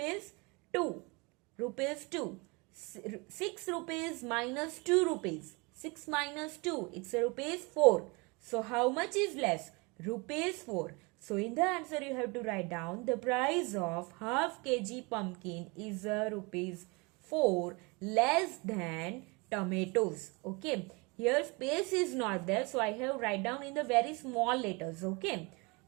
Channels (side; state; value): left; quieter; 28.2 dB